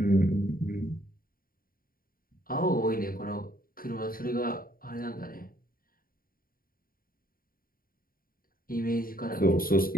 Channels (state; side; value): late; right; 0.42 ms